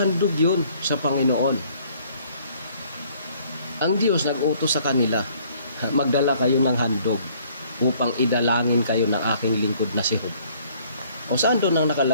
yun sa Panginoon. Ang Diyos nag-utos sa kanila, magdala kayo ng handog upang idalangin kayo ng aking lingkod na si Job. O saan doon ang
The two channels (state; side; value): inverted; both; correlation -0.60